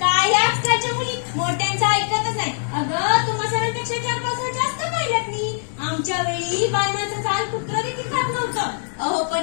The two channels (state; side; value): silent; right; digital silence